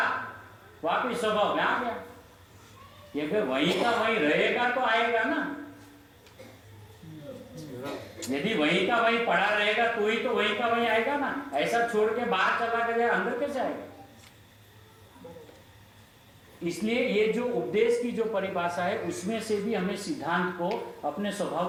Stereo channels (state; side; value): identical; both; correlation 1.00